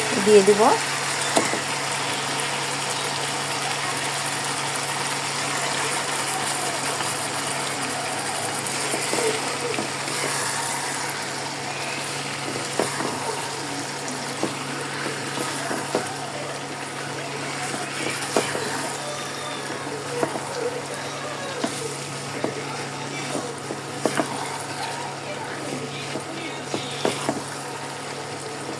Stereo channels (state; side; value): identical; both; correlation 1.00